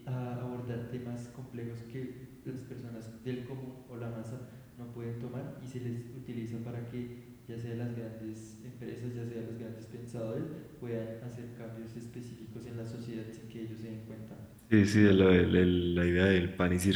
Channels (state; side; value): identical; both; correlation 1.00